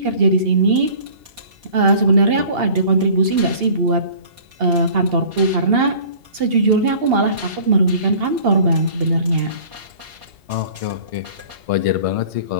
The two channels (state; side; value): late; left; 2.8 ms